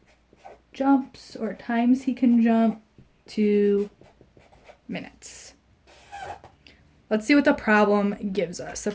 jumps or times he can jump to minutes. Let's see what the problem gives us. The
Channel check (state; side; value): identical; both; correlation 1.00